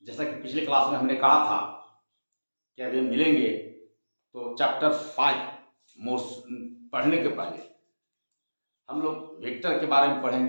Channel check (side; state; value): both; inverted; correlation -1.00